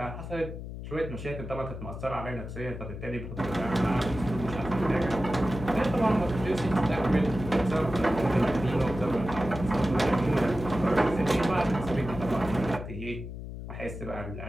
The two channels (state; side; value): noise; left; hum, 9 dB below the sound